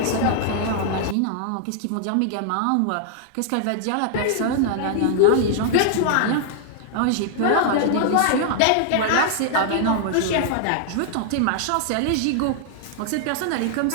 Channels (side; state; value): both; different; correlation -0.01